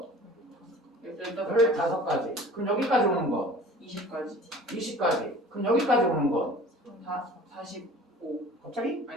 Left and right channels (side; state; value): both; normal; correlation 0.45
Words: 15까지 15가지. 그럼 여기까지 오는 거 20까지 20가지. 그럼 여기까지 오는 거 45 갑자기